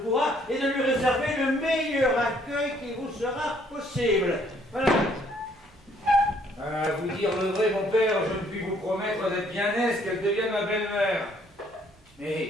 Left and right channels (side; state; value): both; normal; correlation 0.64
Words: et de lui réserver le meilleur accueil qui vous sera possible. Voilà. À vous dire le vrai, mon père, je ne puis vous promettre d'être bien aise qu'elle devienne ma belle-mère.